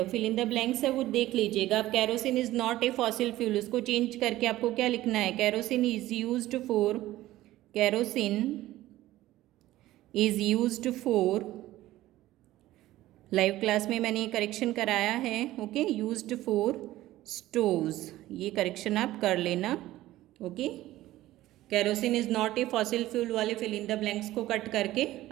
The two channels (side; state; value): left; quieter; 15.7 dB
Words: फिल इन द ब्लैंक्स है वो देख लीजिएगा आप. Kerosene is not a fossil fuel, उसको चेंज करके आपको क्या लिखना है, kerosene is used for, kerosene is used for, live class में मैंने ये करेक्शन कराया है. ओके, यूज्ड फॉर स्टोव्स, ये करेक्शन आप कर लेना. Okay, kerosene is not a fossil fuel वाले फिल इन द ब्लैंक्स को कट करके